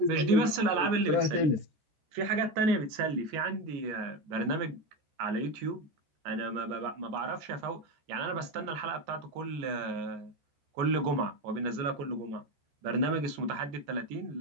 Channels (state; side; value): late; left; 14 ms